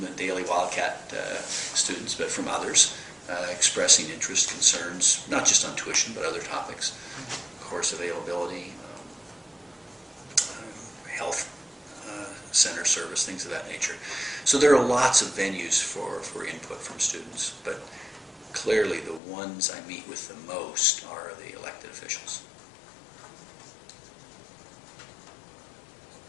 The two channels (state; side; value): drops out; right; at 19.2 s